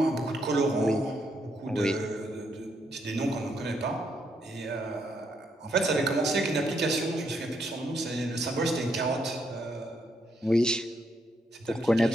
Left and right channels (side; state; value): both; normal; correlation 0.76